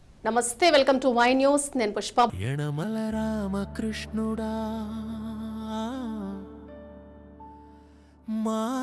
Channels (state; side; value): identical; both; correlation 1.00